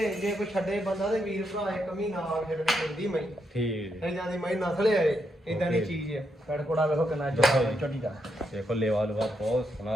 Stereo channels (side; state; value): both; normal; correlation 0.80